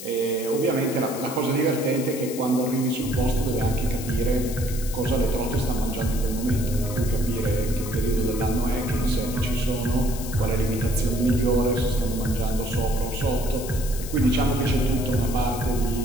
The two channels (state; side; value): noise; left; hiss, 11 dB below the sound